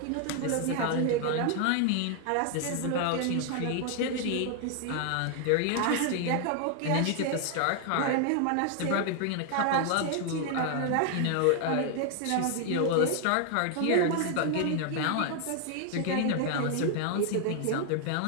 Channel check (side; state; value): both; different; correlation 0.00